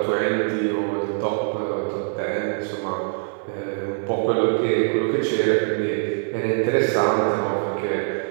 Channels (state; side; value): silent; left; 56 dB below the other